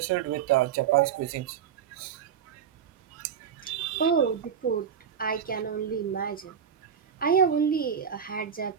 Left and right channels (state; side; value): quieter; left; 8.0 dB